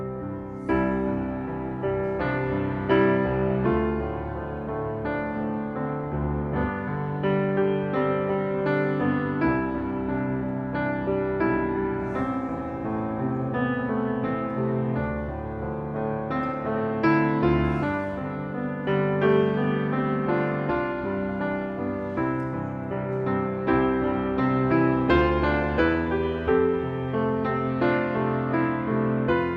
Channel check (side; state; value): both; identical; correlation 1.00